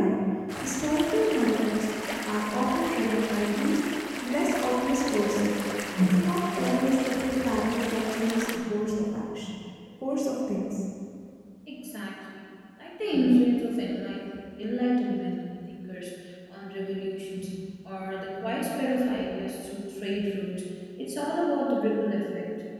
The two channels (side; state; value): both; identical; correlation 1.00